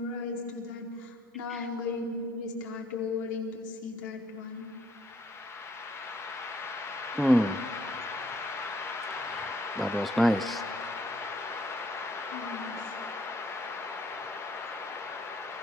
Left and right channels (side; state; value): both; normal; correlation 0.68